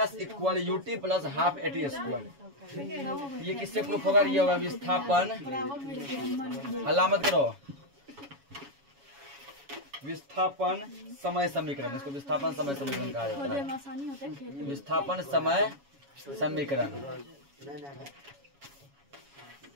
s equal U T plus half A T square. ये किससे प्रूफ होगा, ये होगा विस्थापन, अलामत करो, विस्थापन समय समीकरण। इसको विस्थापन समय समीकरण कहा जाता है। विस्थापन समय समीकरण,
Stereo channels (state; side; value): late; left; 7.2 ms